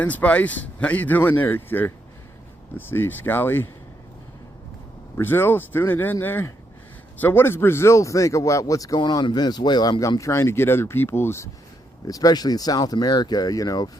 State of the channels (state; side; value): normal; both; correlation 0.79